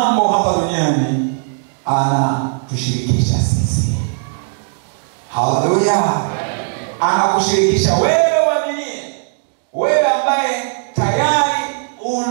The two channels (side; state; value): left; silent; digital silence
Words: hapa duniani. Anatushirikisha sisi. Haleluya. Anakushirikisha wewe uaminie, wewe ambaye tayari